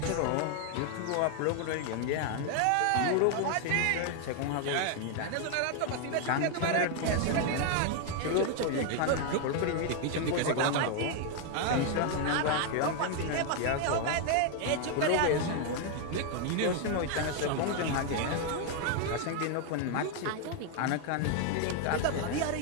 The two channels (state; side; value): different; both; correlation 0.01